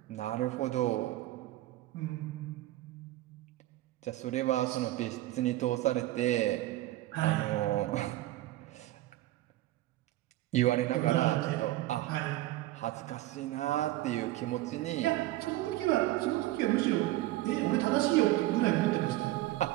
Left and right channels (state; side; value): quieter; left; 16.4 dB